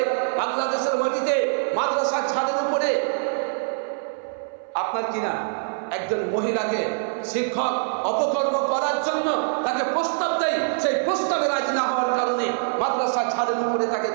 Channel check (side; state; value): left; silent; 62 dB below the other